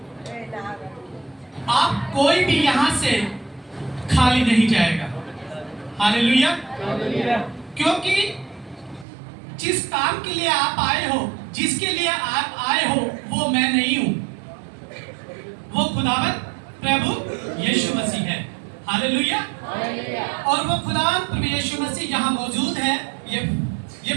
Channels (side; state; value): left; drops out; at 9.1 s